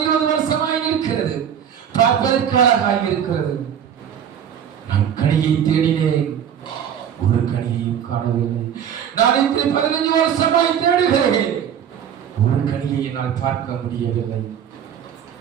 20 வருஷமாய் இருக்கிறது, பார்ப்பதற்கு அழகாய் இருக்கிறது. நான் கனியை தேடினேன், ஒரு கனியையும் காணவில்லை. நான் இப்படி 15 வருஷமாய் தேடுகிறேன், ஒரு கனியை என்னால் பார்க்க முடியவில்லை.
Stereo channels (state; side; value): quieter; left; 8.8 dB